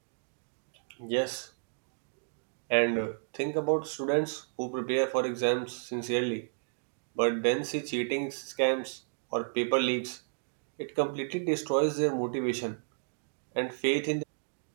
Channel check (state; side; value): silent; left; digital silence